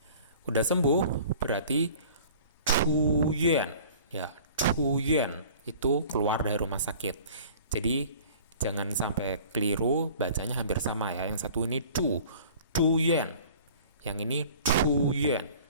Udah sembuh berarti zhuyuan, ya. Zhuyuan itu keluar dari rumah sakit. Jadi jangan sampai keliru, bacanya hampir sama ya. Yang satu ini zhuyuan. Yang ini zhuyuan.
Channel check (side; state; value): both; inverted; correlation -0.46